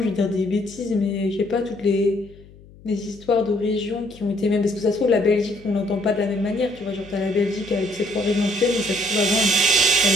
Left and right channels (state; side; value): noise; left; hum, 23 dB below the sound